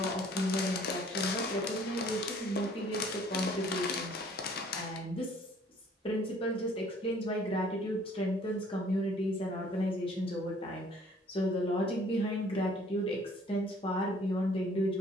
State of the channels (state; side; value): normal; both; correlation 0.57